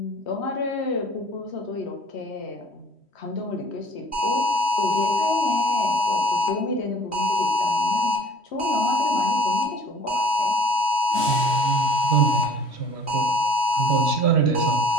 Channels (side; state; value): right; late; 3.1 ms